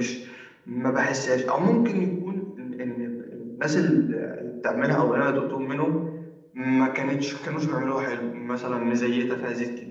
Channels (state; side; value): identical; both; correlation 1.00